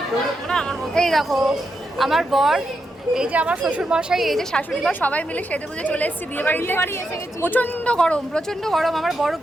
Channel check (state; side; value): normal; both; correlation 0.84